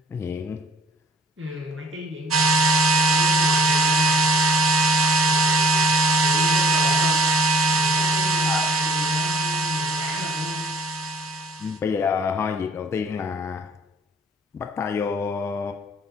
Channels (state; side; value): normal; both; correlation 0.55